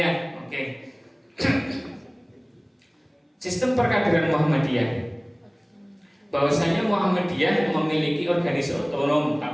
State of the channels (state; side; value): identical; both; correlation 1.00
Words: oke. Sistem perkaderan Muhammadiyah. Bahwasanya Muhammadiyah memiliki organisasi otonom,